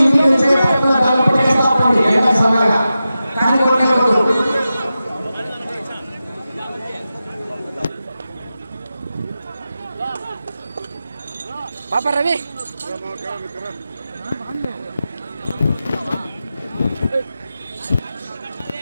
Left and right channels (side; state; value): both; inverted; correlation -0.92